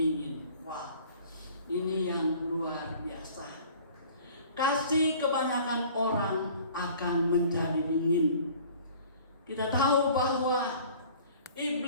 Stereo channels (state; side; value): inverted; both; correlation -0.49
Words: Wow, ini yang luar biasa. Kasih kebanyakan orang akan menjadi dingin. Kita tahu bahwa